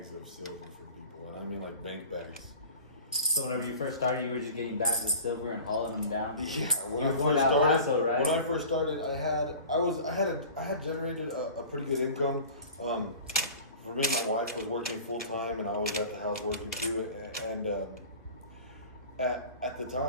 of silver for people, and I mean like bank bags. So whenever you first started, you were just getting bags of silver and hauling them down. Yeah, when you I were going first to El started, Paso, right? When I first started, I had generated a pretty good income. For me, my wife was working full time, and I was at the house working too. And at the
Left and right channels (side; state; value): both; inverted; correlation -0.40